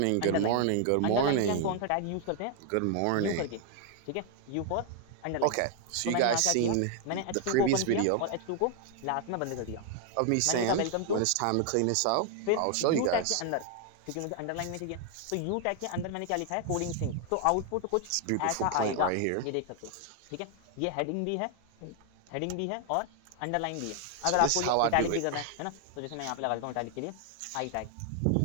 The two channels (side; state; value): both; different; correlation 0.00